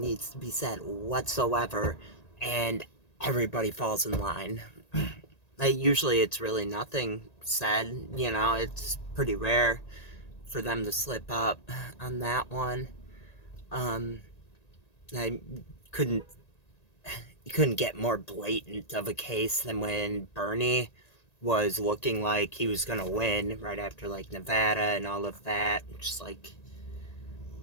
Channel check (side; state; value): right; late; 1.8 ms